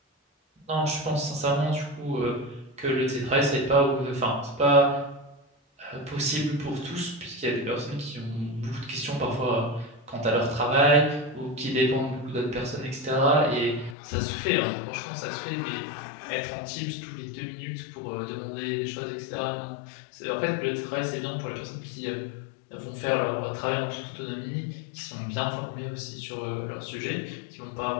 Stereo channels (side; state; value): right; drops out; at 14.0 s